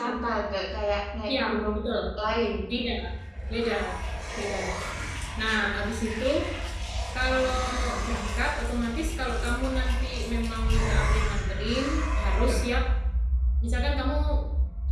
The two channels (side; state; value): both; identical; correlation 1.00